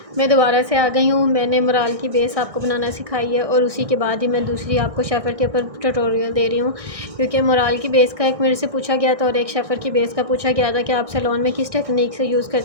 मैं दोबारा से आ गई हूँ। मैंने मोराल की बेस आपको बनाना सिखाई है और उसी के बाद ही मैं दूसरी आपको शेफ़र के ऊपर ट्यूटोरियल दे रही हूँ, क्योंकि मोराल की बेस का एक मेरे से पूछा गया था और एक शेफ़र की बेस का पूछा गया था कि आप सैलून में किस टेक्निक से यूज़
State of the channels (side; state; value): left; late; 1.6 ms